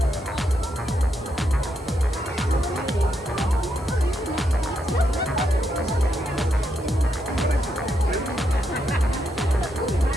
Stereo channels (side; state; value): both; normal; correlation 0.80